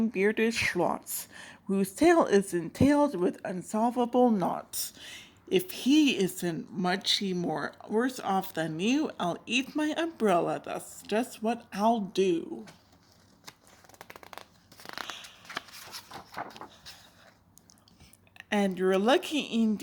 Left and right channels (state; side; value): identical; both; correlation 1.00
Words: schlots, whose tail is entailed with unsolvable knots. If he isn't much more worse off than you, I'll eat my umbrella. That's just what I'll do. And you're lucky